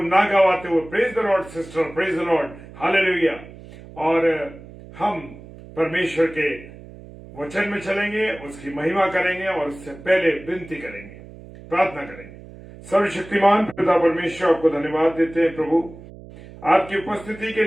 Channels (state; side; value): noise; right; hum, 18 dB below the sound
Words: गवाते हुए, praise the Lord sister, praise the Lord, hallelujah. और हम परमेश्वर के वचन में चलेंगे, उसकी महिमा करेंगे और उससे पहले विनती करेंगे, प्रार्थना करेंगे। सर्वशक्तिमान पिता परमेश्वर, आपको धन्यवाद देते हैं प्रभु, आपकी उपस्थिति के